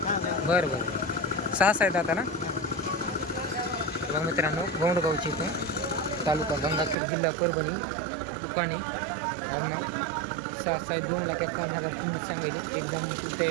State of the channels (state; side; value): drops out; left; at 7.0 s